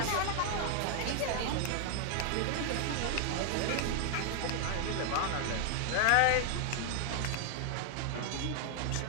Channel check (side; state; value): both; different; correlation 0.00